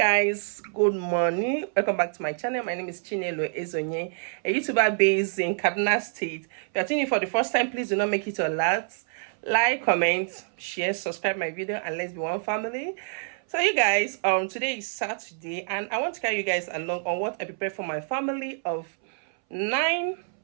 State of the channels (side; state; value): left; silent; 60 dB below the other